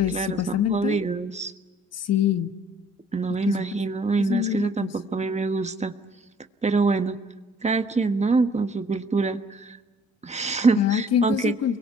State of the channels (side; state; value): both; normal; correlation 0.57